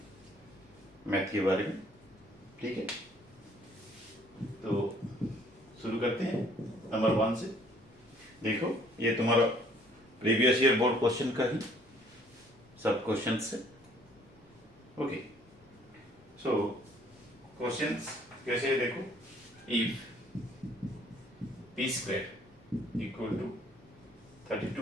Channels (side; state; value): both; normal; correlation 0.60